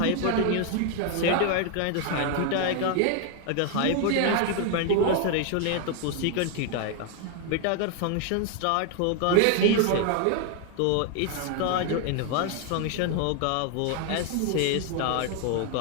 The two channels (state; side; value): different; both; correlation 0.01